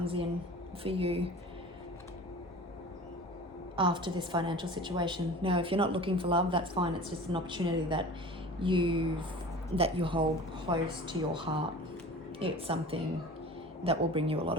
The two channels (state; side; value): normal; both; correlation 0.39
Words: in for you after this financial situation. Now, if you're not looking for love, that's fine. It's just an opportunity that you hold close to your heart. It's something that will bring you a lot